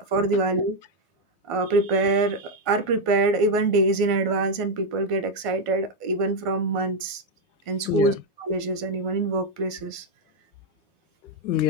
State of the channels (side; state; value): right; late; 1.5 ms